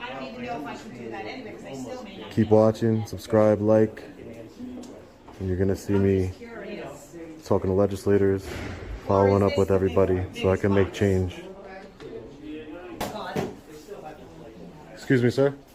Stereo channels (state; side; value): identical; both; correlation 1.00